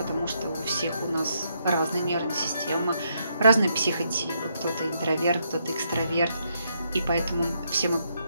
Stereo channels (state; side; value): inverted; both; correlation -0.76